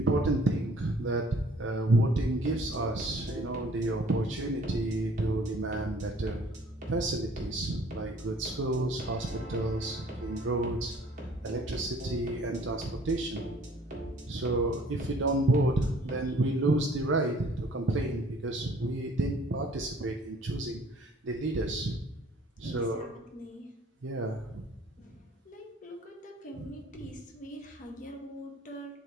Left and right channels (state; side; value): normal; both; correlation 0.55